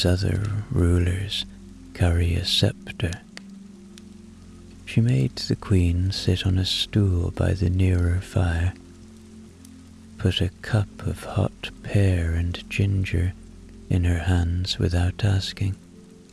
other rulers carry a scepter. She made the Queen sit on a stool by the nearer fire, put a cup of hot pear and ginger in her hands without asking,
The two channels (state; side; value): identical; both; correlation 1.00